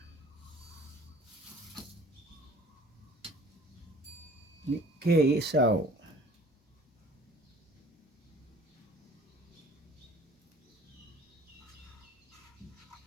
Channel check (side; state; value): both; normal; correlation 0.50